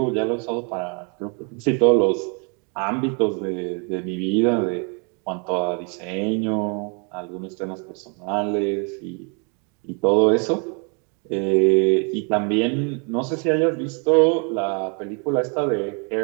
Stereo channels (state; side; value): quieter; left; 36.8 dB